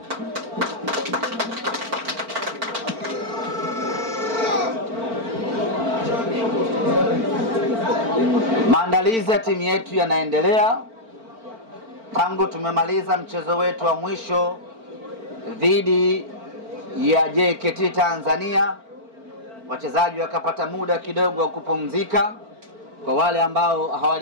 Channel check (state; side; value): late; left; 4.4 ms